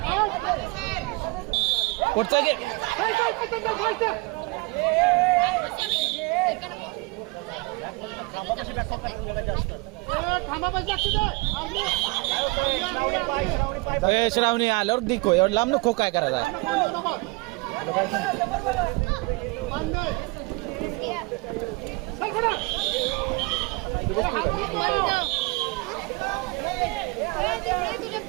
पुढचा घे. श्रावणी आल्यावर दिको एवढं लांब नको काय करायचं आहे.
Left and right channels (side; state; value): left; quieter; 26.4 dB